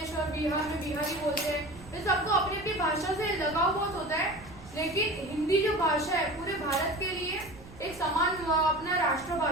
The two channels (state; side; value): noise; right; rumble, 19 dB below the sound